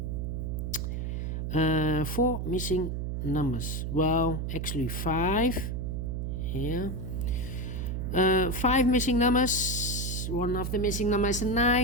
4 missing numbers. Well, actually 5 here. 5 missing numbers. One of the missing numbers is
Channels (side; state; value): right; noise; hum, 2 dB below the sound